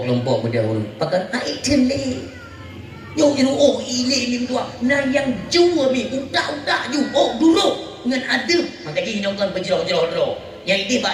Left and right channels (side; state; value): both; identical; correlation 1.00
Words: kelompok beda urang. Pakai item ni. Yo ini ni tua. Nah yang jua mi utak-utak ju. Dulu dengan adab. Maka dia hinaukan berjerah-jerah. Yang ini